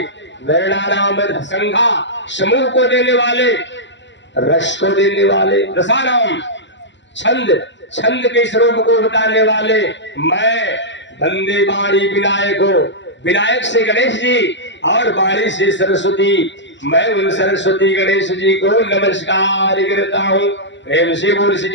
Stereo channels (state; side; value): late; right; 0.53 ms